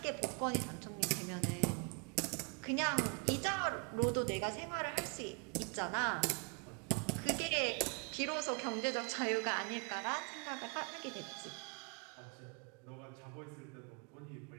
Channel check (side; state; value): left; quieter; 34.3 dB